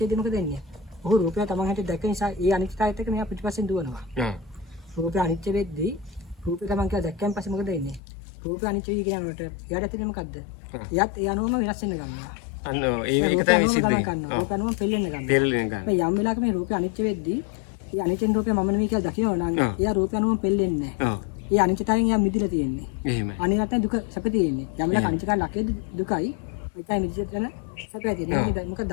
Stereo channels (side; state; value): right; drops out; at 8.0 s